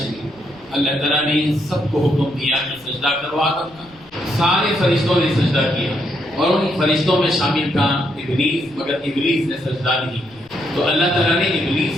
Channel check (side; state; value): left; noise; rumble, 28 dB below the sound